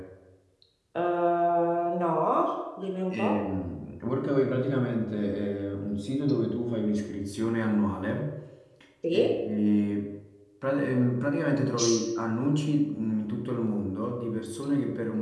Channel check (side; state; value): both; identical; correlation 1.00